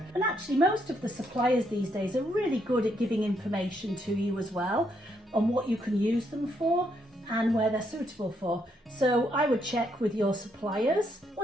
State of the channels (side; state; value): both; normal; correlation 0.75